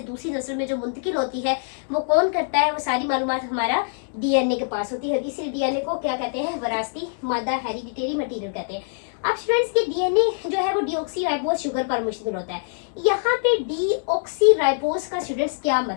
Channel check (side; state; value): right; silent; digital silence